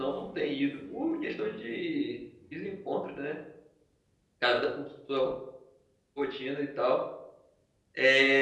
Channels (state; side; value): identical; both; correlation 1.00